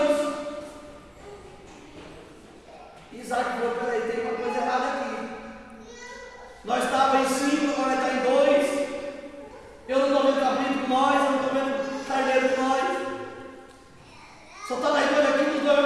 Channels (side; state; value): both; identical; correlation 1.00